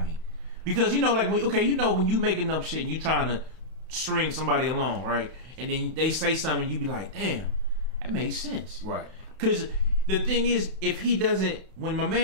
me. Because like when you making up shit and you trying to string somebody along, right? And then they say something, you be like, damn, that makes sense. Right. Because the thing is, if he doesn't, when my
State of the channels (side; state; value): left; late; 31 ms